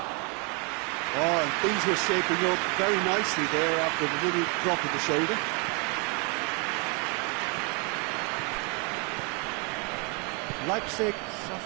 Oh, and things were shaping up very nicely there after the little drop of the shoulder. Leipzig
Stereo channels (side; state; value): left; quieter; 32.5 dB